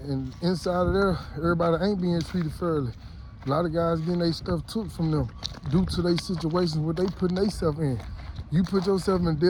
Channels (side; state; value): both; identical; correlation 1.00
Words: inside of there, everybody ain't being treated fairly. A lot of guys getting their stuff took from them due to their situations, what they putting themselves in. You put yourself in